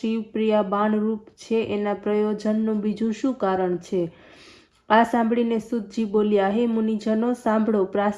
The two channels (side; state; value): both; identical; correlation 1.00